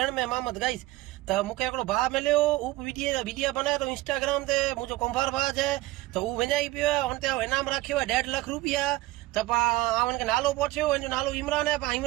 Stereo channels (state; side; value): quieter; left; 18.5 dB